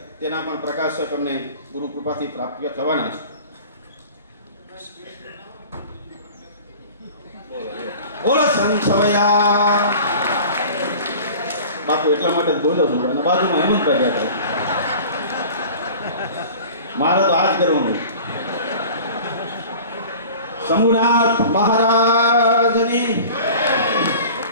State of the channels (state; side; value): inverted; both; correlation -0.41